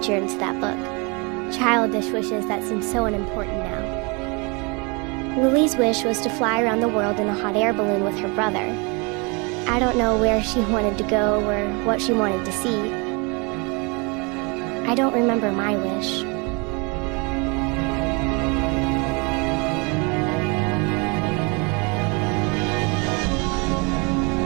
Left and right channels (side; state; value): left; quieter; 30.4 dB